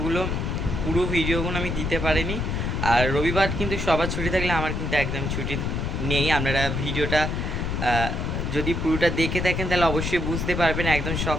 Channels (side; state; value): left; noise; rumble, 1 dB below the sound